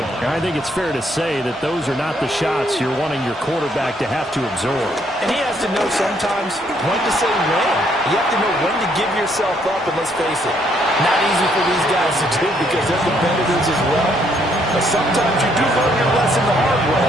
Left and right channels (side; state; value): both; normal; correlation 0.70